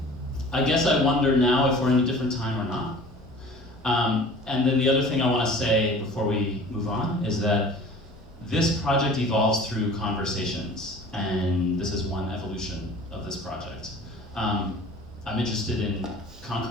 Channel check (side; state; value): both; normal; correlation 0.44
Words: guess I wonder now if we're in a different time or not. And then the other thing I want to say before we move on is that this project evolves through conversations, and this is one evolution of this project. I'm interested in